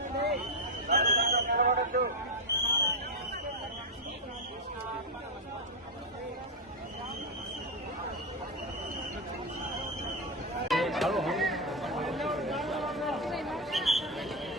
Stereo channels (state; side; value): normal; both; correlation 0.07